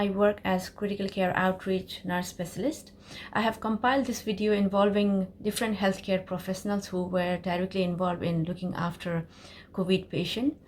work as critical care outreach nurse specialist. I have compiled this video involving different healthcare professionals who were directly involved in looking after COVID patient.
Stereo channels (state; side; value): identical; both; correlation 1.00